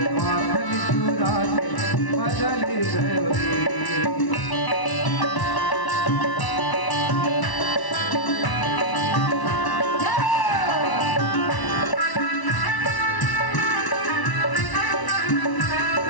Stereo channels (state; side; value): late; right; 1.0 ms